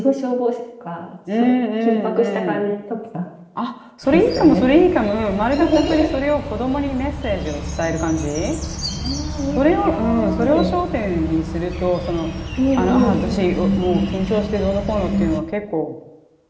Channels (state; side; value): identical; both; correlation 1.00